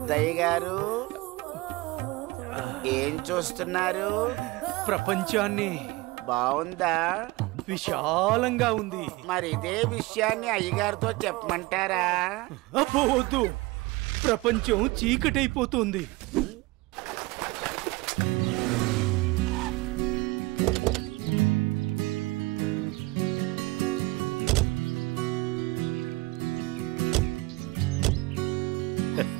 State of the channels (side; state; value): left; quieter; 22.0 dB